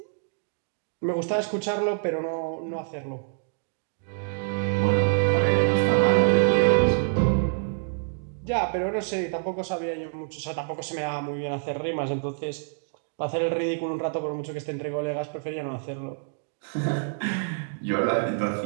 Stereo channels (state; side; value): silent; left; digital silence